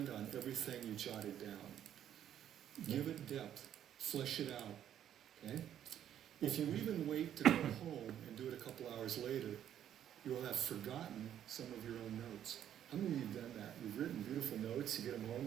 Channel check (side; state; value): left; quieter; 10.4 dB